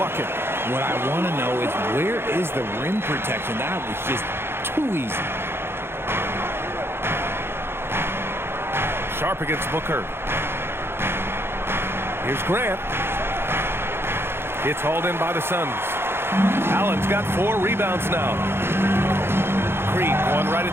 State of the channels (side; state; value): left; late; 0.11 ms